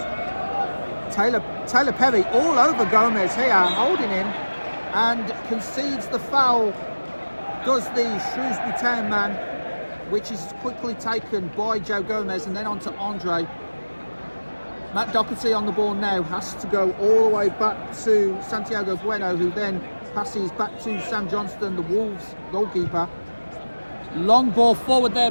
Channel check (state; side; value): inverted; both; correlation -1.00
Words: Taylor Perry all over Gomez here, holding him, and concedes the foul. Does the Shrewsbury Town man, which is quickly taken by Joe Gomez, and then on to Andre. Matt Doherty on the ball now, has to go all the way back to Santiago Bueno, who then passes back to Sam Johnston, the Wolves goalkeeper. Long ball forward